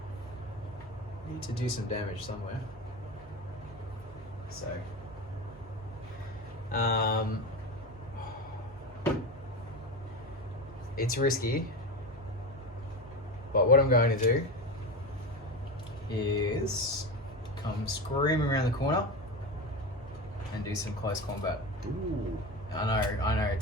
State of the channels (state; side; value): normal; both; correlation 0.23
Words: do some damage somewhere. So it's risky, but what I'm going to do is come screaming around the corner and do some close combat. Ooh. I know,